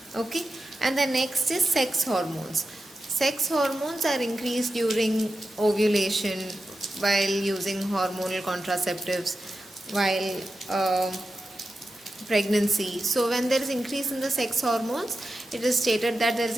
Okay, and the next is sex hormones. Sex hormones are increased during ovulation, while using hormonal contraceptives, while pregnancy. So when there is increase in the sex hormones, it is stated that there is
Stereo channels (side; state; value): both; normal; correlation 0.91